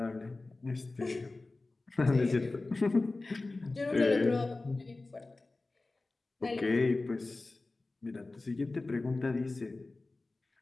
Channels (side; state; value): right; quieter; 3.3 dB